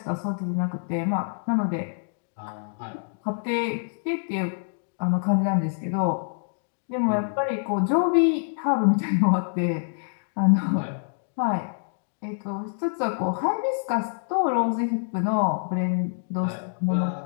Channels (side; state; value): right; silent; digital silence